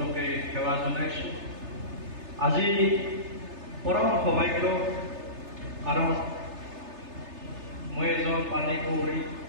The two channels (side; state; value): left; late; 3.3 ms